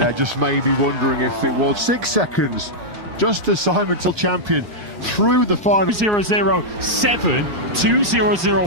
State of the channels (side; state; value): left; late; 4.5 ms